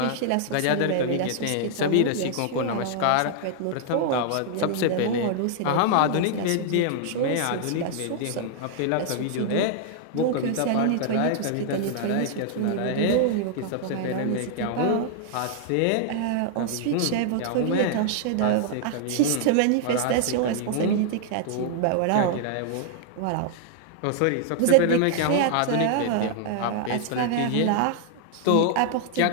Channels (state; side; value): different; both; correlation -0.01